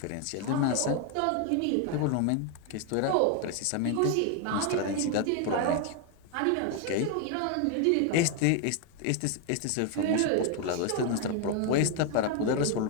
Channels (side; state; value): both; different; correlation 0.01